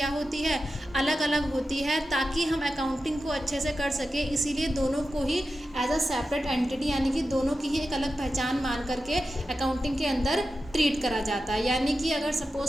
होती है, अलग अलग होती है, ताकि हम अकाउंटिंग को अच्छे से कर सके। इसीलिए दोनों को ही एज अ सेपरेट एंटिटी यानी कि दोनों की ही एक अलग पहचान मान करके अकाउंटिंग के अंदर ट्रीट करा जाता है। यानी कि अगर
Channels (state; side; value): normal; both; correlation 0.91